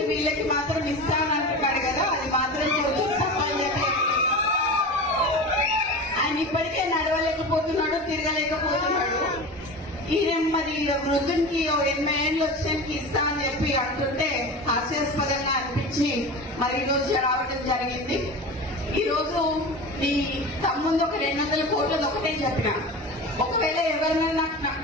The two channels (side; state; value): both; normal; correlation 0.30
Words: వీళ్ళకి మాత్రం ఇస్తానంటున్నాడు కదా, అది మాత్రం కొంచెం తప్పని చెప్పి ఆయన ఇప్పటికే నడవలేకపోతున్నాడు, తిరగలేకపోతున్నాడు. ఈయన మరి వృద్ధునికి 80 ఏళ్ళు వచ్చినానికి ఇస్తా అని చెప్పి అంటుంటే హాస్యాస్పదంగా అనిపించి మరి ఈ రోజు రావడం జరిగింది. ఈ రోజు ఈ తమ్ముందు ఒక 200 కోట్లది ఒకటే చెప్పిన, ఒకవేళ ఎవరైనా నాకు